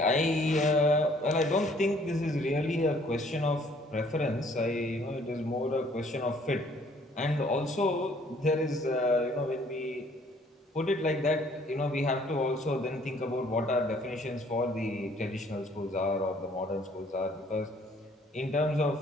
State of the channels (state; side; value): normal; both; correlation 0.60